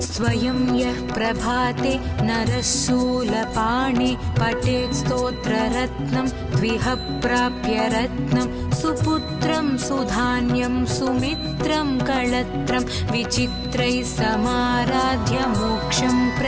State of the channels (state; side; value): identical; both; correlation 1.00